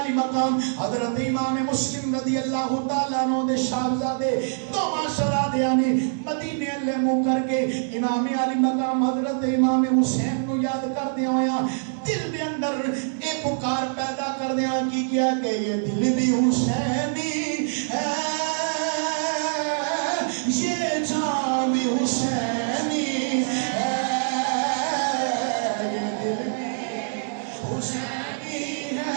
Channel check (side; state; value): left; silent; digital silence